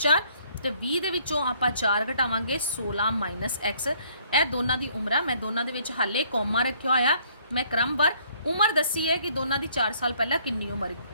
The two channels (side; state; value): both; inverted; correlation -0.63